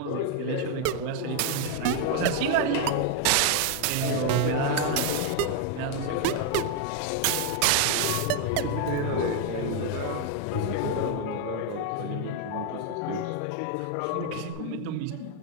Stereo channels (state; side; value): different; both; correlation 0.01